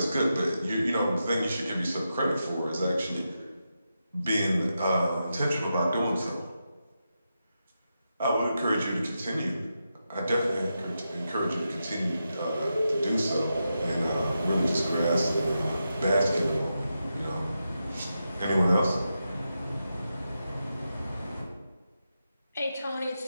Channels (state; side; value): inverted; both; correlation -0.88